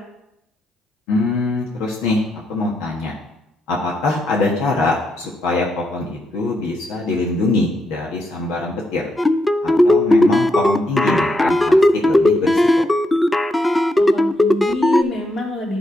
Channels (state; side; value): normal; both; correlation 0.80